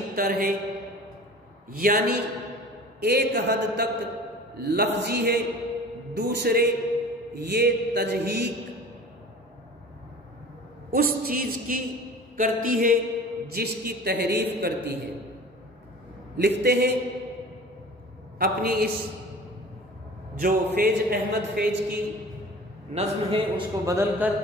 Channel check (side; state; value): both; normal; correlation 0.41